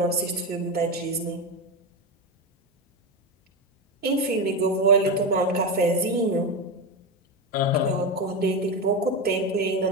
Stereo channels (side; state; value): both; normal; correlation 0.15